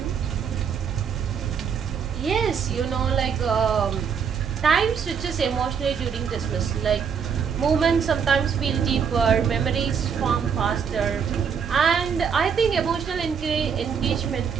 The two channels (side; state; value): left; quieter; 6.9 dB